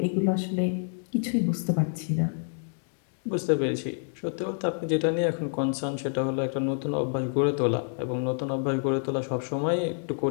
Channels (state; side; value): silent; right; 59 dB below the other